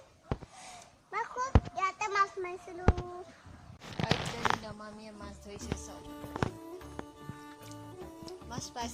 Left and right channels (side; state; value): both; identical; correlation 1.00